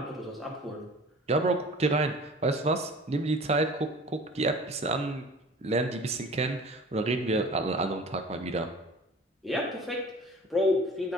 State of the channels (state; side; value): normal; both; correlation 0.43